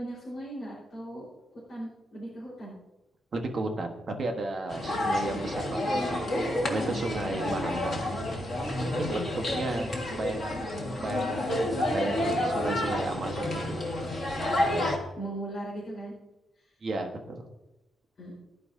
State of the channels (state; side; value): normal; both; correlation 0.80